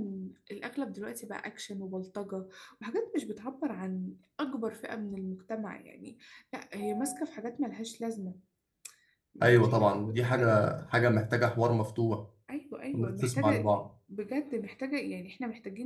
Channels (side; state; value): both; identical; correlation 1.00